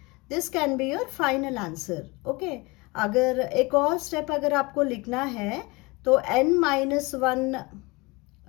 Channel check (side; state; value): right; quieter; 25.0 dB